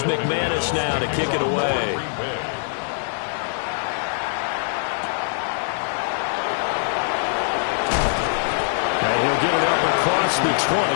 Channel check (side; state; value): right; silent; digital silence